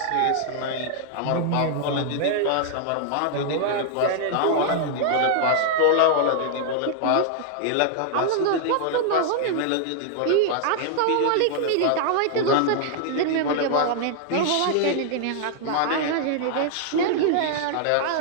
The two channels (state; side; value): different; both; correlation -0.01